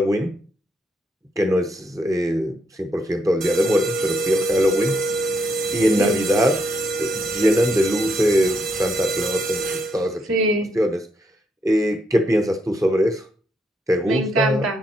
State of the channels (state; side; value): normal; both; correlation 0.77